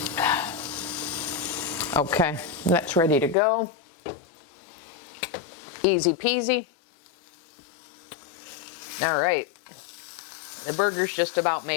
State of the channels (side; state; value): right; drops out; at 3.4 s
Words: Okay, that's ready to go. Easy peasy. All right, the burger's just about